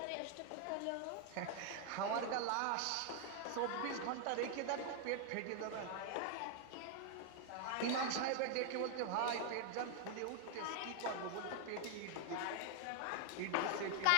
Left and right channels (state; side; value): different; both; correlation 0.00